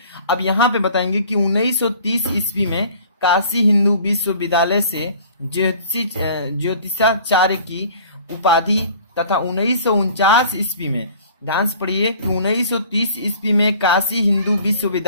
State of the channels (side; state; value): both; inverted; correlation -0.49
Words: अब यहाँ पे बताएंगे कि 1930 ईस्वी में काशी हिंदू विश्वविद्यालय से ज्योतिषाचार्य की उपाधि तथा 1949 ईस्वी में ध्यान से पढ़िए कि 1930 ईस्वी में काशी हिंदू